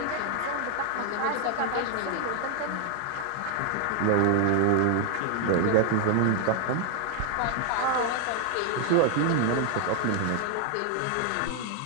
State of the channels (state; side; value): different; both; correlation 0.00